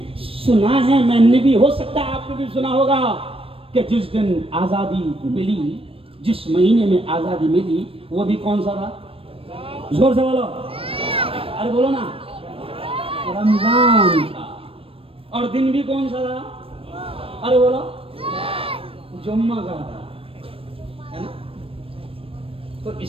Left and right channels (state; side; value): late; left; 0.27 ms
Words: सुना है, मैंने भी, हो सकता है आपने भी सुना होगा कि जिस दिन आजादी मिली, जिस महीने में आजादी मिली, वो भी कौन सा था? जोर से बोलो, अरे बोलो ना, रमजान था। और दिन भी कौन सा था? अरे बोलो, जुम्मा का था, है ना? तो